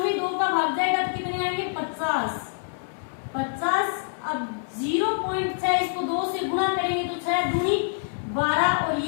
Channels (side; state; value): right; silent; 61 dB below the other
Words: 2 का भाग जाएगा तो कितने आएंगे 50। अब 0.6 इसको 2 से गुणा करेंगे तो 6 दूनी 12 और